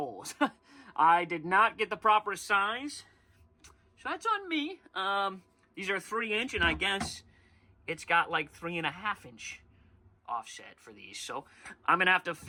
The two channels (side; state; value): both; identical; correlation 1.00